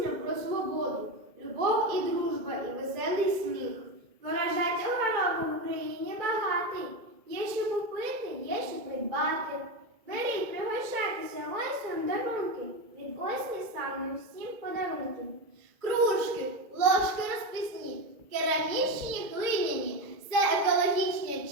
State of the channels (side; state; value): left; late; 2.3 ms